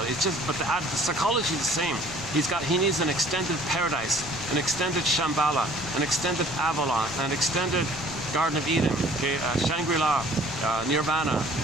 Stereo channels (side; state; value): left; noise; rumble, 16 dB below the sound